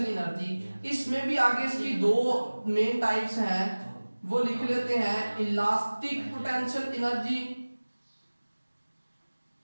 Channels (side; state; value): both; inverted; correlation -1.00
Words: एनर्जी। इसमें भी आगे इसकी 2 मेन टाइप्स हैं, वो लिख लेते हैं, इलास्टिक पोटेंशियल एनर्जी